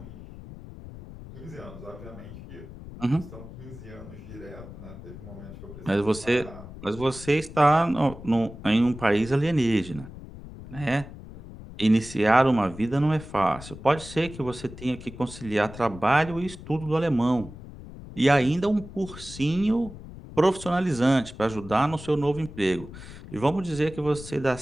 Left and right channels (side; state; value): left; noise; rumble, 14 dB below the sound